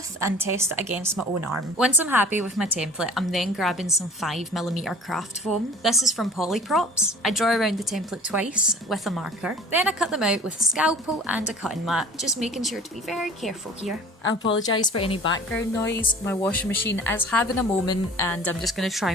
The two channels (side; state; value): both; normal; correlation 0.45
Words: and test it against my own arm. Once I'm happy with my template, I'm then grabbing some 5mm craft foam. This is from Polyprops. I draw around the template twice with a marker, then I cut them out with a scalpel and a cutting mat, just making sure to be very careful here. I apologise for any background noise. My washing machine is having a moment and I'm just going to try